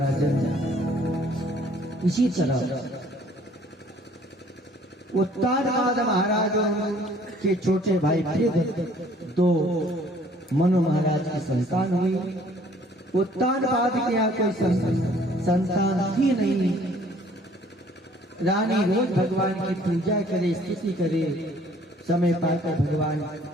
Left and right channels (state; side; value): normal; both; correlation 0.58